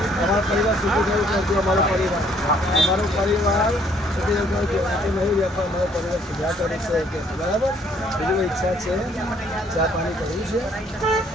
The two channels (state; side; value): normal; both; correlation 0.64